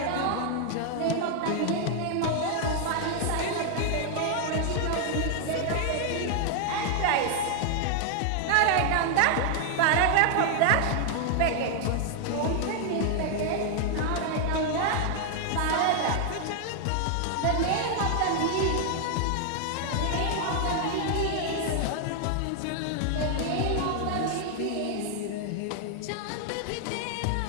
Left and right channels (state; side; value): different; both; correlation 0.00